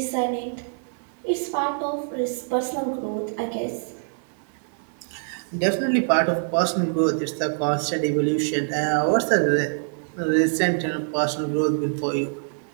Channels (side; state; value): left; silent; 62 dB below the other